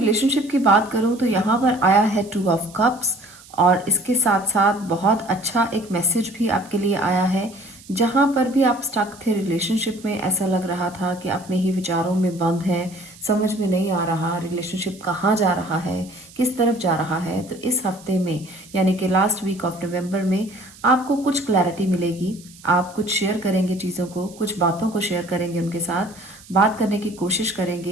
की बात करूं तो यहाँ पर आया है 2 ऑफ कप्स, और इसके साथ साथ बहुत अच्छा एक मैसेज भी आपके लिए आया है। जहां पर भी आप स्टक थे रिलेशनशिप में, ऐसा लग रहा था कि अपने ही विचारों में बंद हैं, समझ में नहीं आ रहा रिलेशनशिप कहाँ जा रहा है, किस तरफ जा रहा है। तो इस हफ्ते में, यानी कि लास्ट वीक ऑफ नवंबर में, आपको कुछ क्लैरिटी मिलेगी। आप कुछ शेयर करेंगे चीज़ों को, कुछ बातों को शेयर करेंगे, उनके साथ बात करने की कोशिश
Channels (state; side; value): noise; right; hiss, 22 dB below the sound